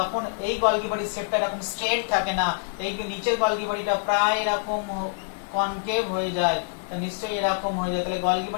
এই গলগি বডির শেপটা এরকম স্ট্রেট থাকে না, এই নিচের গলগি বডিটা প্রায় এরকম কনকেভ হয়ে যায়, নিশ্চয়ই এরকম হয়ে যায়। তাহলে গলগি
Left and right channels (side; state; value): right; silent; digital silence